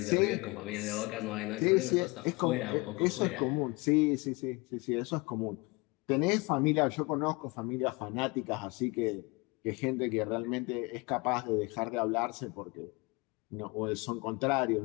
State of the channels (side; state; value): right; quieter; 26.3 dB